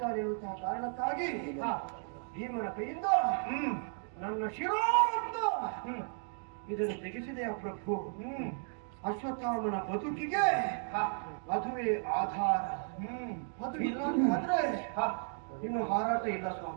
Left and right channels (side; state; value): left; silent; 55 dB below the other